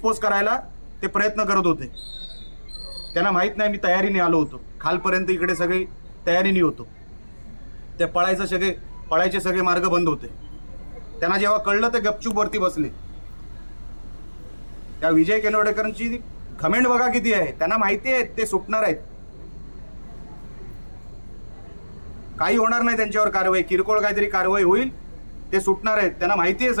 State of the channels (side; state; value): both; inverted; correlation -1.00